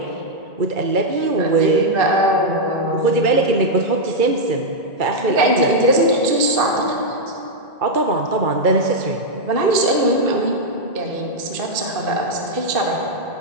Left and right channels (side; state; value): left; late; 2.5 ms